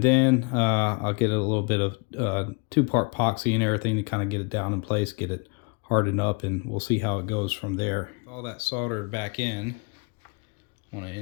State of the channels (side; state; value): right; quieter; 32.6 dB